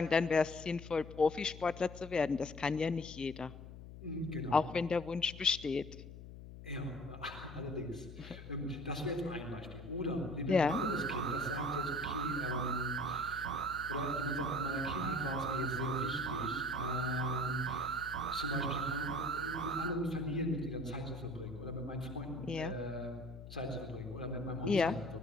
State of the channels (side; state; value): left; noise; hum, 13 dB below the sound